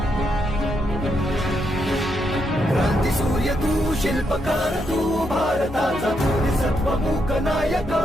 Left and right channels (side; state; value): both; normal; correlation 0.79